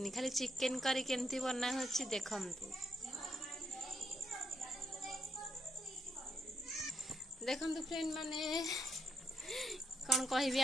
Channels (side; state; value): both; normal; correlation 0.79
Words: खाली चिकन करी केमती बना होची देखंतु। देखंतु फ्रेंड माने कौन कहबी